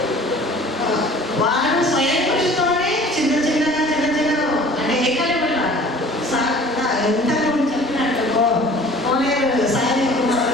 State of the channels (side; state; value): both; normal; correlation 0.47